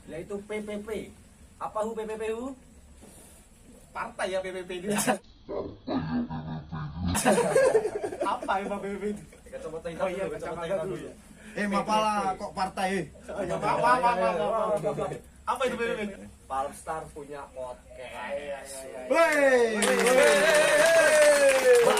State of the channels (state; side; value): identical; both; correlation 1.00